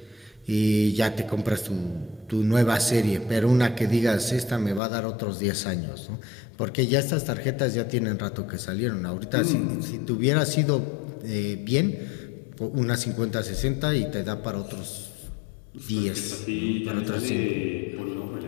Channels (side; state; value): right; drops out; at 4.8 s